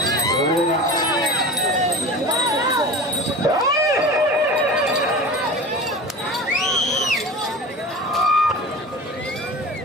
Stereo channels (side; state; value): both; normal; correlation 0.33